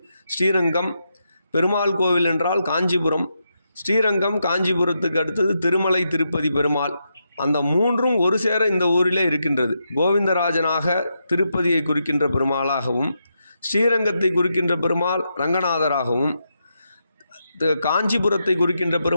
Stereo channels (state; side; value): inverted; both; correlation -0.84